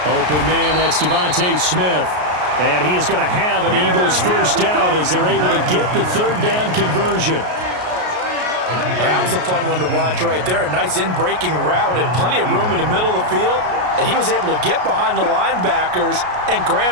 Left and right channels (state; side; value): late; left; 33 ms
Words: Open man, that's Devontae Smith. And he is going to have an Eagles first down as they're able to get the third down conversion. That was a fun one to watch right there. A nice in-breaking route and plenty of room in the middle of the field. And he was able to get behind the linebackers and